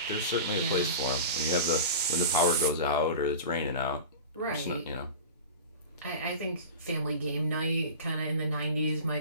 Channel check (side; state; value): both; inverted; correlation -0.32